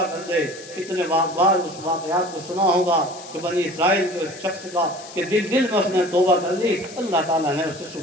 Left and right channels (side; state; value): left; noise; hiss, 17 dB below the sound